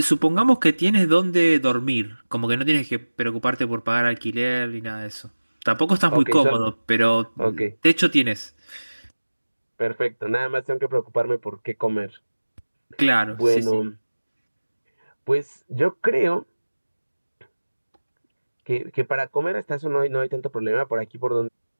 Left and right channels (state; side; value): inverted; both; correlation -1.00